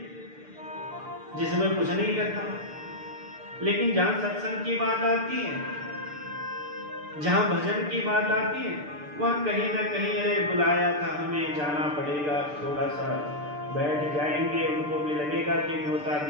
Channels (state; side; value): late; left; 6.8 ms